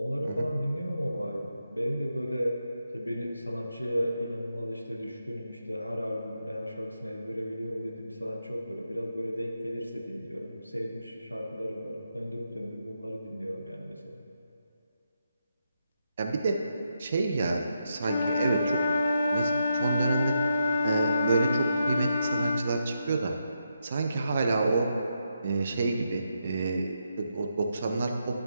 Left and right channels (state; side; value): inverted; both; correlation -0.83